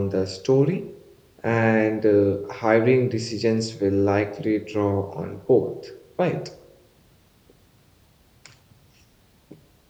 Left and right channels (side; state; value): both; identical; correlation 1.00